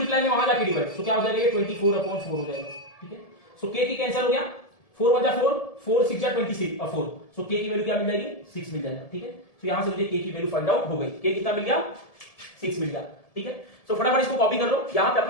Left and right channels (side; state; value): right; late; 1.7 ms